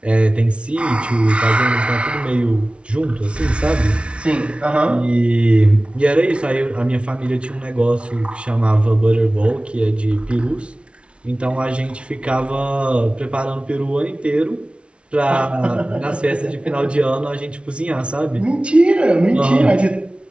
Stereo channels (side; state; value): left; late; 0.059 ms